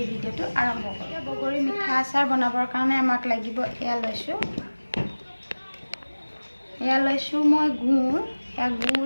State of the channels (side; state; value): both; inverted; correlation -1.00